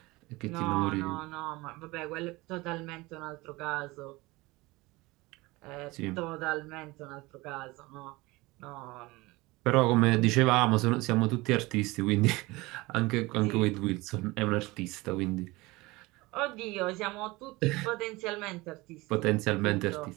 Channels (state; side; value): quieter; left; 22.0 dB